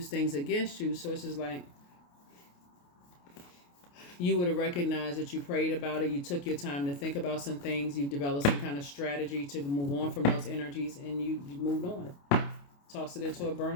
things against you. So it's just like you would have recognized that you prayed about it, you took your time to think about some things, you developed some kind of strategy to move on from those energies, and you moved on. Tossed it into a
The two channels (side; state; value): right; late; 28 ms